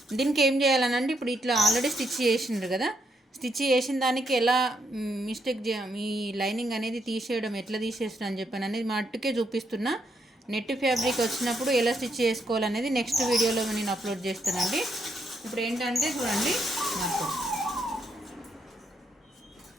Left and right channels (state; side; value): normal; both; correlation 0.76